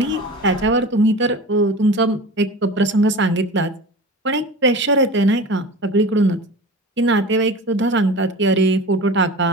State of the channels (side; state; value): both; normal; correlation 0.34